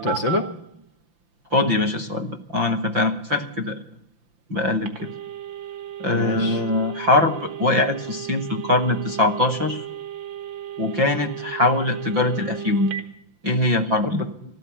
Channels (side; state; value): left; late; 5.8 ms